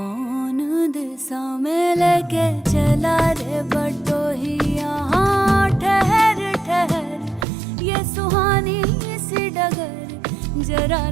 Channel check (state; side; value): drops out; left; at 7.5 s